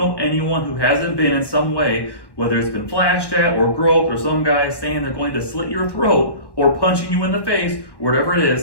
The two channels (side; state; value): right; late; 1.1 ms